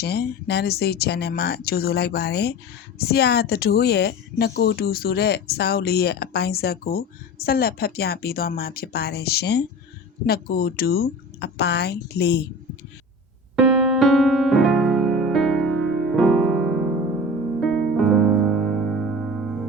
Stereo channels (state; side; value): normal; both; correlation 0.34